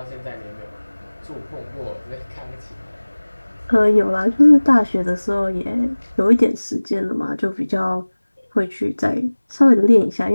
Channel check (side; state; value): both; inverted; correlation -1.00